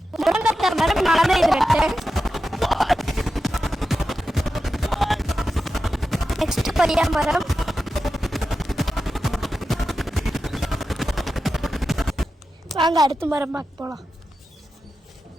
முருங்கக்காய் மரம் நாளே இது நட்டேன். நெக்ஸ்ட் கொய்யா மரம். வாங்க அடுத்த மரம் பார்க்க போலாம்.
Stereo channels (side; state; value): both; normal; correlation 0.91